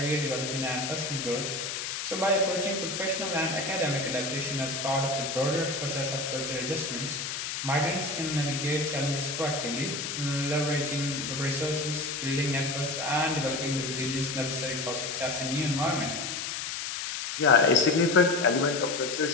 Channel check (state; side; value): noise; left; hiss, 4 dB below the sound